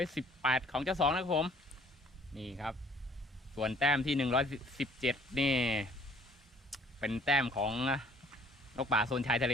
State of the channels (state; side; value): normal; both; correlation 0.57